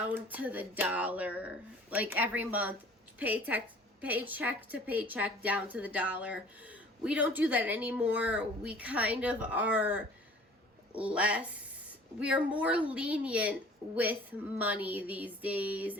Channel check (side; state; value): both; normal; correlation 0.49